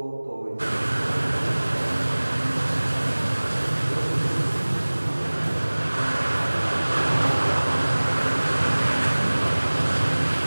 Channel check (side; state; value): both; inverted; correlation -1.00